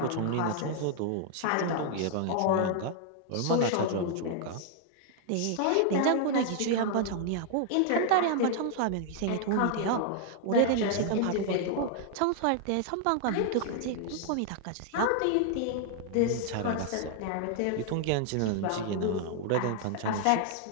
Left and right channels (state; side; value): different; both; correlation 0.00